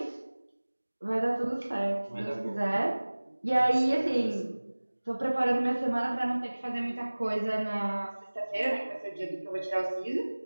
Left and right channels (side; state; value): both; inverted; correlation -1.00